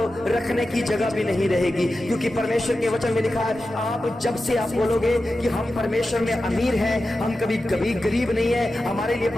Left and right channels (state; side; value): normal; both; correlation 0.92